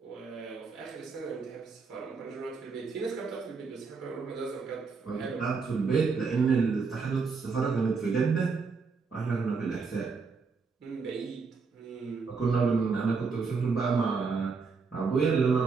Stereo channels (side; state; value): left; quieter; 4.8 dB